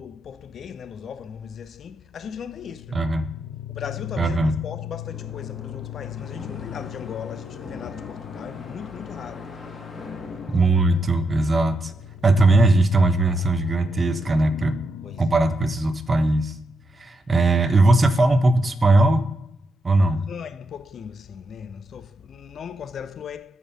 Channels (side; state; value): both; normal; correlation 0.82